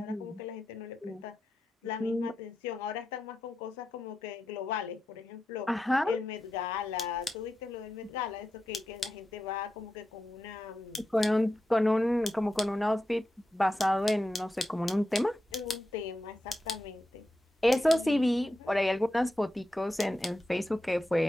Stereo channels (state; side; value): normal; both; correlation 0.89